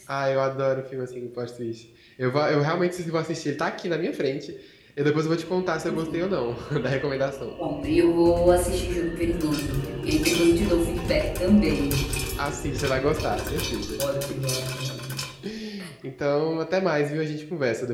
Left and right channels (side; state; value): both; identical; correlation 1.00